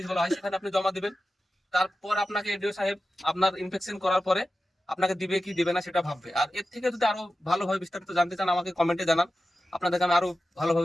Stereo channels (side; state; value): both; normal; correlation 0.93